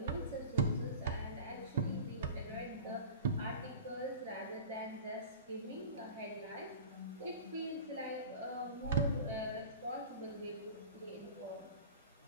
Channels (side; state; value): both; inverted; correlation -0.35